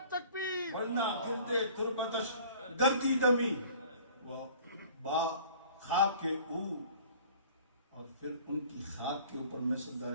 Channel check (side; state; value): both; inverted; correlation -0.49